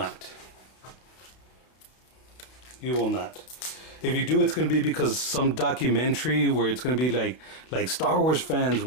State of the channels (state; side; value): late; right; 31 ms